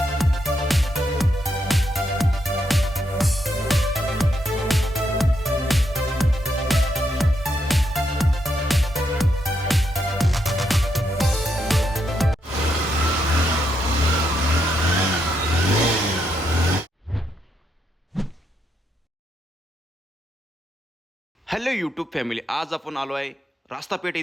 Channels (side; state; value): both; normal; correlation 0.79